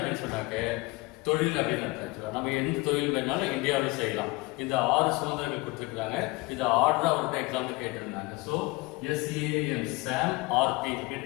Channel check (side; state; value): right; quieter; 23.8 dB